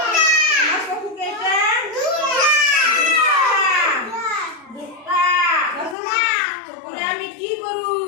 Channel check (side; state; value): right; drops out; at 6.0 s